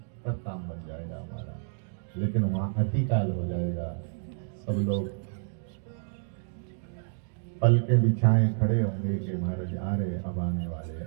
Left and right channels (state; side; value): silent; left; digital silence